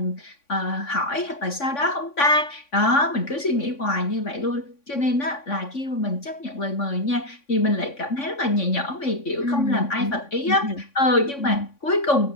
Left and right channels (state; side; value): late; right; 3.5 ms